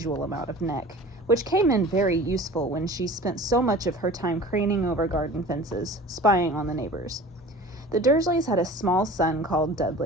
amount of neck, which came in very useful when she spent so much of her time craning over garden fences, spying on the neighbors. The Dursleys had a small son called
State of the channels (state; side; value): normal; both; correlation 0.41